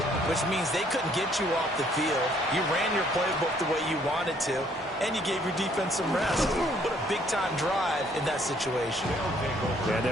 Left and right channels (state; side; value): normal; both; correlation 0.64